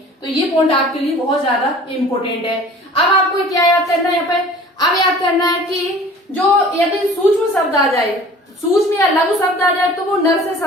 तो ये पॉइंट आपके लिए बहुत ज्यादा इंपॉर्टेंट है। अब आपको क्या याद करना है यहाँ पे, अब याद करना है कि जो यदि सूक्ष्म शब्द आ जाए, सूक्ष्म या लघु शब्द आ जाए तो वो नर से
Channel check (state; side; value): normal; both; correlation 0.46